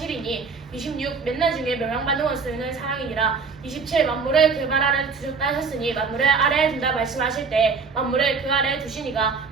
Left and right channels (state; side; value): quieter; left; 5.0 dB